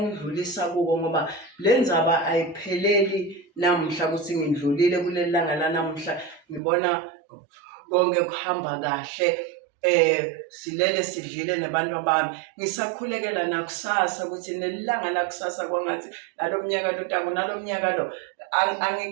kuko, ngoba le ndzaba ayipheleli namuhla ukuthi ngidlulile kuleli langa lanamuhla, ngibona konke kuhamba kahle. Silele sidlile nabantu bami, ngisakhulekela nakusasa ukuthi nelanga lakusasa kwangathi nalo mnyaka lo tako, nalo mnyaka lo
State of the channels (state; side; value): drops out; left; at 6.6 s